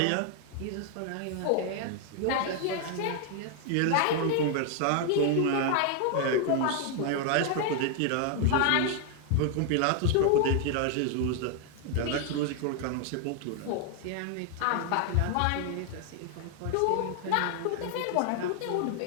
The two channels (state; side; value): different; both; correlation 0.00